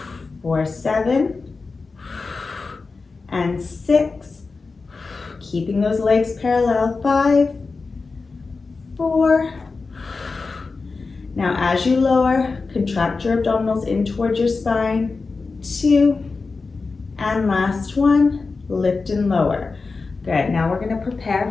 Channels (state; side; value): quieter; right; 4.2 dB